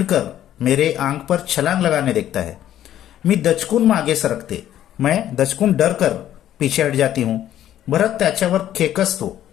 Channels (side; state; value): right; quieter; 11.8 dB